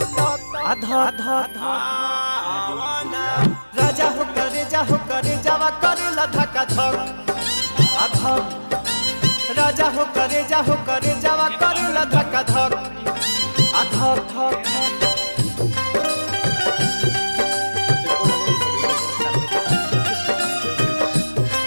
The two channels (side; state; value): both; inverted; correlation -1.00